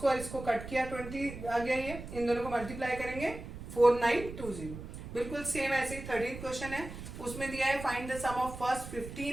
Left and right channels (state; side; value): noise; right; rumble, 11 dB below the sound